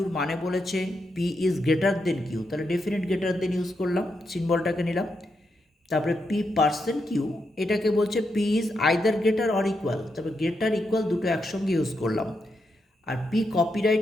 মানে বলেছে p is greater then q। তাহলে ডেফিনেট গ্রেটার দেন ইউজ করলাম, সিম্বলটাকে নিলাম। তারপরে p%q, এটাকে বলছে p is either greater or equal. তারপরে গ্রেটার ইকুয়াল দুটো একসঙ্গে ইউজ করলাম। আর p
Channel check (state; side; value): normal; both; correlation 0.83